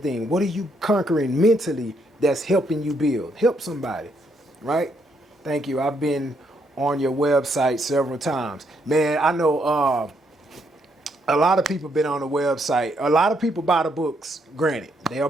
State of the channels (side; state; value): both; normal; correlation 0.74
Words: what are you conquering mentally that's helping you build? Help somebody, right? Thank you. I've been on your website several times. Man, I know a lot of people been on the website. A lot of people buy the books, granted. They are